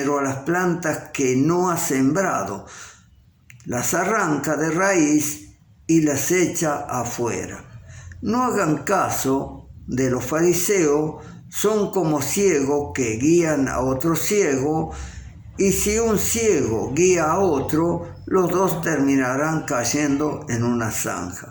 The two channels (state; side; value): identical; both; correlation 1.00